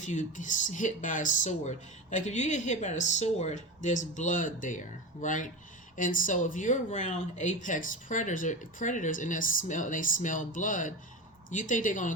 you get hit by a sword? Like, if you get hit by a sword, there's blood there, right? And so if you're around apex predators and they smell blood, you think they're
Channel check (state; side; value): normal; both; correlation 0.24